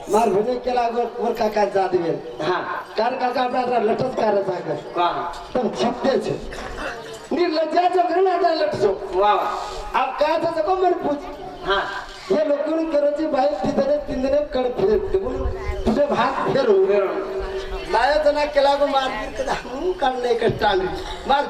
मार भने केला वर काका जात गेल हा कार काका आपला लटच कार जागा का तुम छपते छे निर्लज्जा जो घरना आता लटसो वा अब का था सको मन पूछ हा ये लोगों ने करो जी भाई तिंदने कड़ फिर तुझे भाग फेरू लाया तना केला को मार गिर कदा काढले एक टांगरी मार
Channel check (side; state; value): both; identical; correlation 1.00